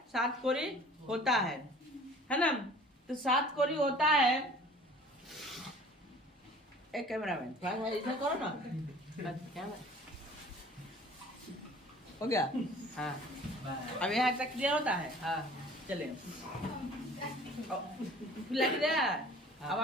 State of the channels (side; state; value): both; normal; correlation 0.47